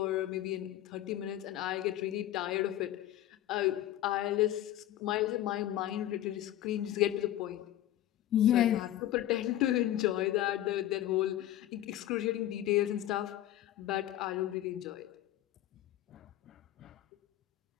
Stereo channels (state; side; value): quieter; right; 13.3 dB